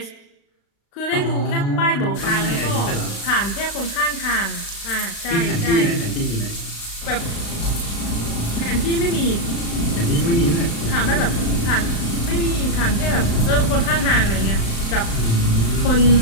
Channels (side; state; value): right; late; 35 ms